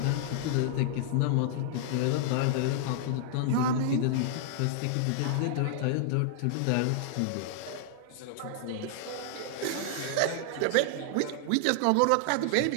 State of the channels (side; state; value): both; different; correlation -0.01